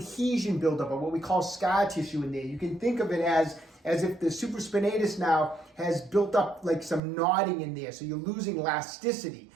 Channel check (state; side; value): drops out; left; at 7.0 s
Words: buildup, or what we call scar tissue in there. You can think of it as if the supraspinatus now has built up like some knotting in there. So you're losing elasticity.